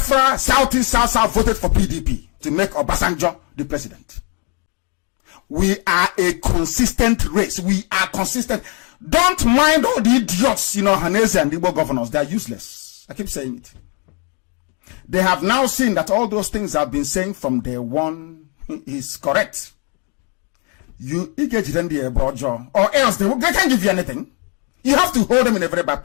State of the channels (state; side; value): quieter; right; 35.3 dB